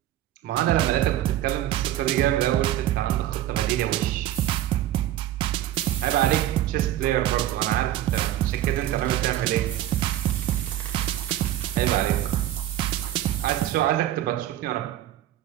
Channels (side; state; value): left; quieter; 13.1 dB